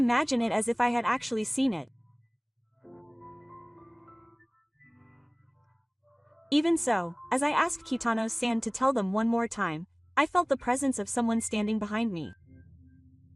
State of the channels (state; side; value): identical; both; correlation 1.00